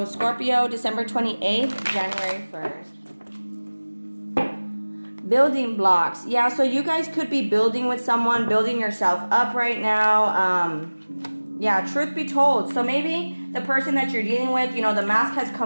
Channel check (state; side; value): inverted; both; correlation -1.00